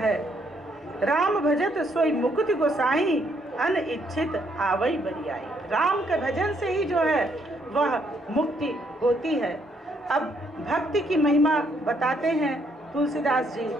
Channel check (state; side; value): normal; both; correlation 0.71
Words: राम भजत सोई मुकुति गोसाई, अनिच्छित आवई बरियाई। राम के भजन से ही जो है वह मुक्ति होती है। अब भक्ति की महिमा बताते हैं तुलसीदास जी।